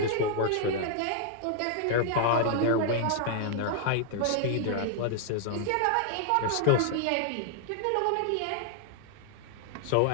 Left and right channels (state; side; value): different; both; correlation 0.00